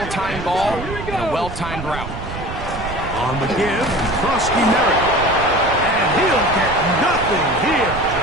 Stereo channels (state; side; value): noise; right; rumble, 9 dB below the sound